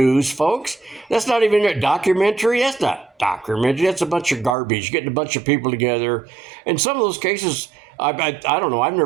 folks. That's not even a documentary. That's not documentary. That's a bunch of garbage, getting a bunch of people together. In some of those cases, I don't know. I've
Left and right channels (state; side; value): drops out; left; at 4.5 s